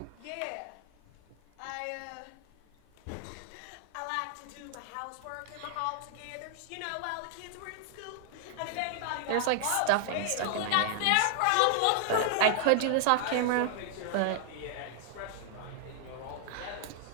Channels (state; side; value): different; both; correlation -0.01